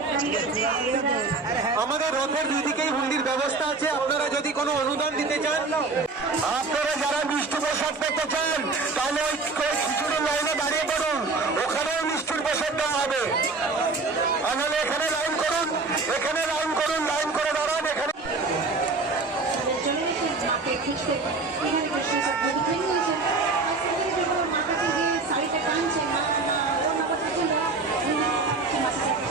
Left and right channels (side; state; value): left; quieter; 3.8 dB